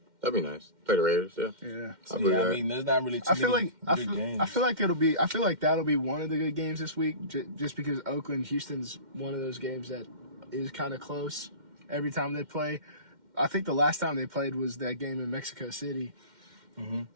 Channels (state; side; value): late; left; 2.1 ms